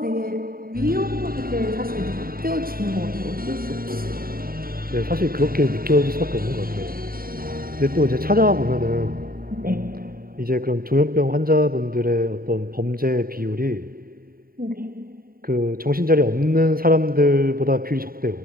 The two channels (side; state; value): left; late; 0.43 ms